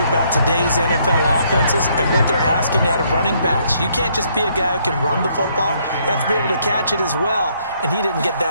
about today's NFL offenses and what they're asking out of running backs. You can't just be a guy who can run the football. You have to be able to catch it as well, and he didn't get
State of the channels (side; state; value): both; inverted; correlation -0.69